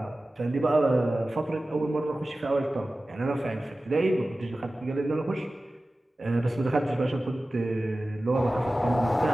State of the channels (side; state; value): both; normal; correlation 0.96